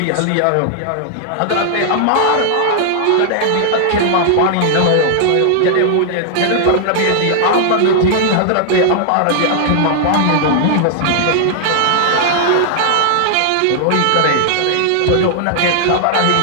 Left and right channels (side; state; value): both; different; correlation -0.01